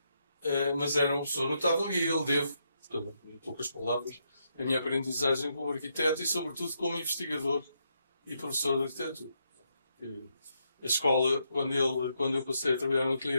mas era uma pessoa notável e ele devo, portanto, em poucas palavras, a minha aprendizagem como arquiteto e, sobretudo, como investigador e professor de arquitetura. A escola, quando eu passei a trabalhar no ateliê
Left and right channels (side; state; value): both; inverted; correlation -0.79